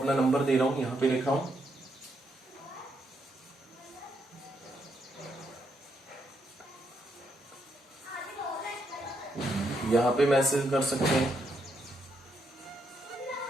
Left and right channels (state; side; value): normal; both; correlation 0.78